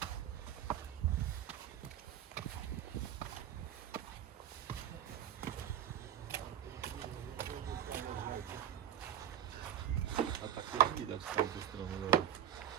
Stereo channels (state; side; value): quieter; left; 10.3 dB